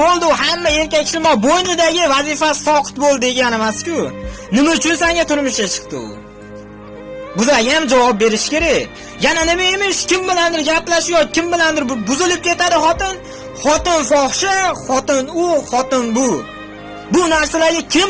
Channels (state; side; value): identical; both; correlation 1.00